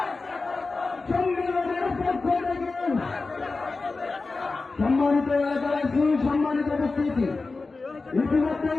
সম্মেলনের পক্ষ থেকে। সম্মানিত এলাকাবাসী, সম্মানিত উপস্থিতি,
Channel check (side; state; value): right; quieter; 3.8 dB